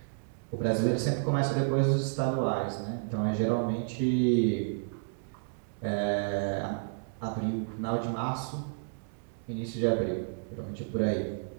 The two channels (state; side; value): silent; left; digital silence